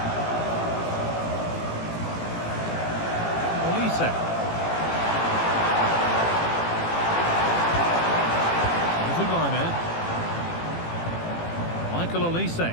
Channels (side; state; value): right; late; 18 ms